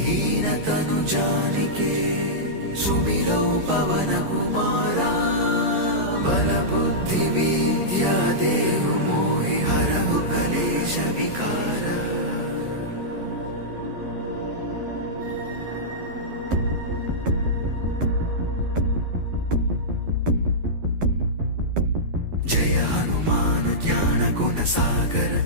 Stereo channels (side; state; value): left; late; 11 ms